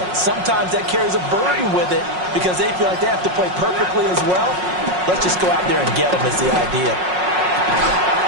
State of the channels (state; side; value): late; left; 5.5 ms